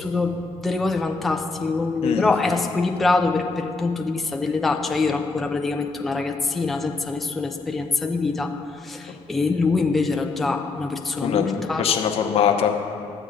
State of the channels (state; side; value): quieter; right; 4.0 dB